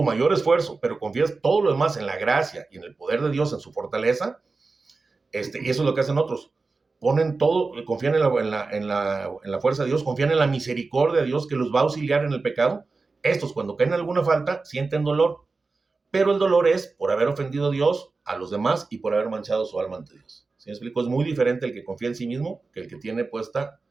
mayor esfuerzo, pero confías todo lo demás en la gracia y en el poder de Dios, en su fortaleza. Y eso es lo que hacen otros. Ponen todo, confían en la fuerza de Dios, confían en la misericordia de Dios que los va a auxiliar en el pecado. Estos, cuando caen en alguna falta, sienten dolor. Pero el dolor es por haber ofendido a Dios, a los demás y por haber manchado su alma ante Dios. ¿Sí me explico? Es muy diferente el que confía en sí mismo que el que tiene puesta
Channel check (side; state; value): left; quieter; 4.0 dB